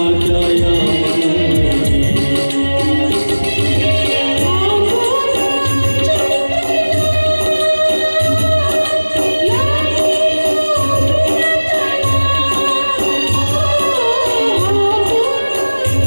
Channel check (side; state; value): both; inverted; correlation -1.00